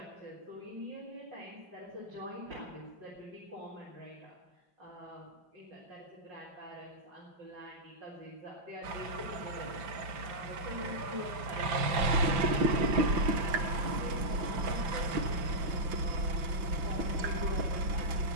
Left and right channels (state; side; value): late; left; 5.9 ms